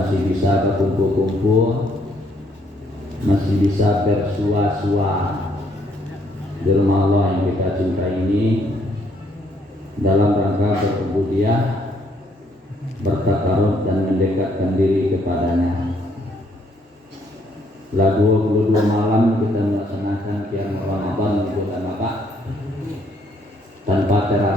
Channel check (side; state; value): both; normal; correlation 0.69